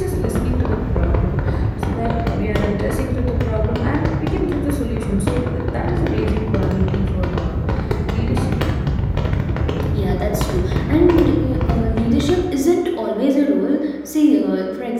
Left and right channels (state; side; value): identical; both; correlation 1.00